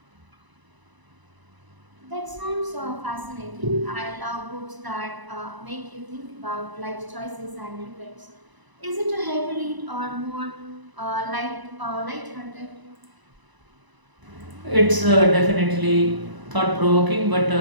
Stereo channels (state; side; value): late; left; 1.0 ms